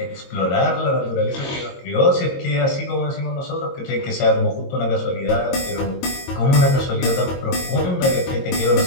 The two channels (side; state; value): right; late; 22 ms